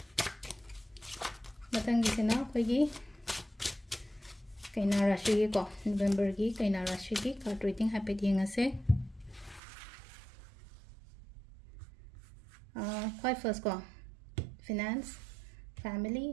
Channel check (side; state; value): left; drops out; at 9.6 s